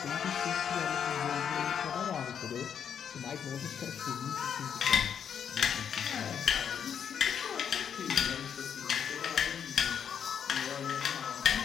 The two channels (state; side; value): quieter; right; 8.0 dB